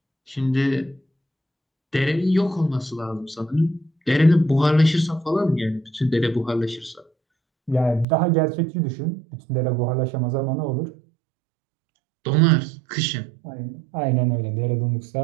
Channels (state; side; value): drops out; left; at 8.1 s